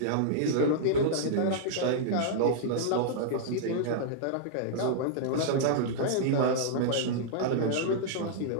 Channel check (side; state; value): both; different; correlation -0.02